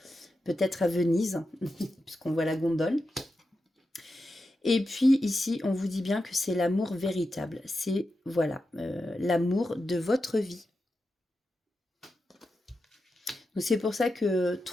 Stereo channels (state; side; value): normal; both; correlation 0.89